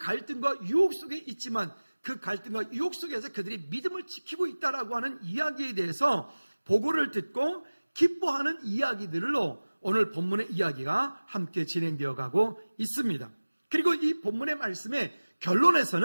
유혹 속에 있지만 그 갈등과 유혹 속에서 그들이 믿음을 지키고 있다라고 하는 이야기에 대해서 보고를 듣고 기뻐하는 이야기들로 오늘 본문의 이야기가 함께 진행되어 가고 있습니다. 그리고 이 본문의 말씀의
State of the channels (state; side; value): inverted; both; correlation -1.00